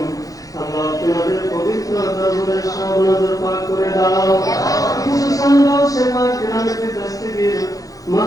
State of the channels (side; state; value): right; late; 0.17 ms